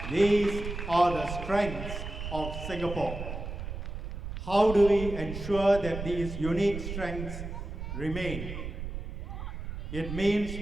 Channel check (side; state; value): right; noise; rumble, 7 dB below the sound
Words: the strengths of Singapore. How do we ensure that these unique strengths remain? It